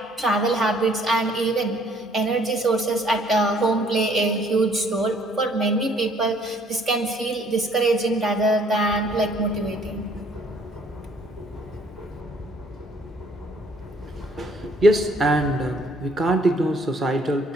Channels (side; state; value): both; normal; correlation 0.61